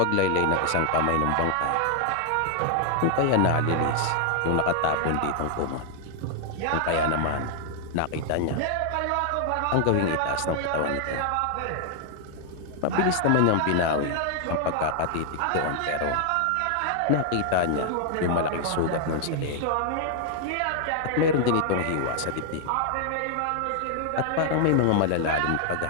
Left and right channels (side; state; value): both; different; correlation 0.00